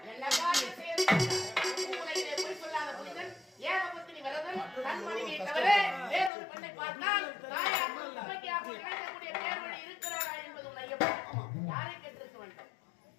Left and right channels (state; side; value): drops out; right; at 6.3 s